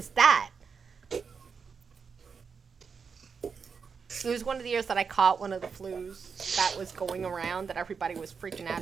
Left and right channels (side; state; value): left; quieter; 5.8 dB